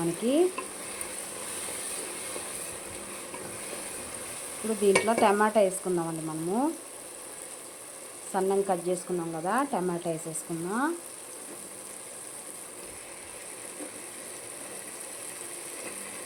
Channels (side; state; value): both; identical; correlation 1.00